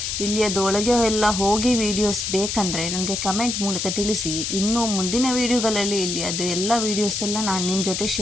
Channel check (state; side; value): noise; left; hiss, 2 dB below the sound